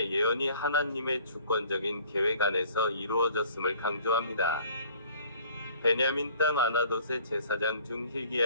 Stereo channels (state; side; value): inverted; both; correlation -0.53